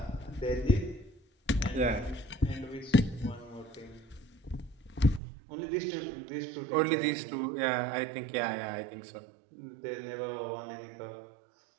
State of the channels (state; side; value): drops out; left; at 5.2 s